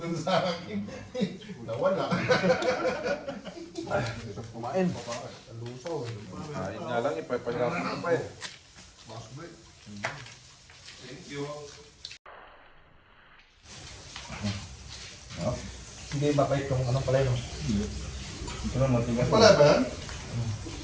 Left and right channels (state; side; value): identical; both; correlation 1.00